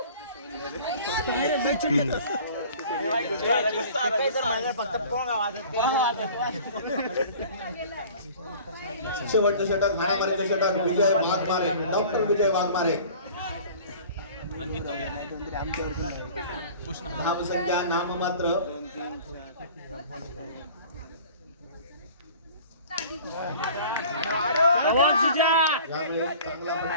शेवटचं षटक हाणामारीचं षटक विजय वाघमारे. डॉक्टर विजय वाघमारे. धावसंख्या नाममात्र. यावेळी चांगला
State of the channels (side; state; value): both; inverted; correlation -0.45